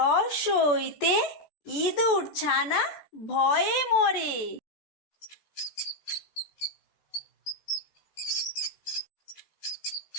ইঁদুর ছানা ভয়ে মরে।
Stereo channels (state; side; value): late; right; 13 ms